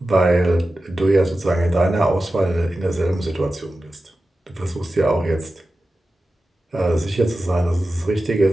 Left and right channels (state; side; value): normal; both; correlation 0.94